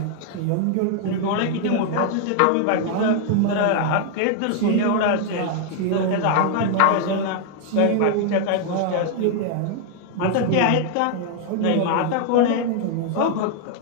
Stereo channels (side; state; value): both; different; correlation 0.00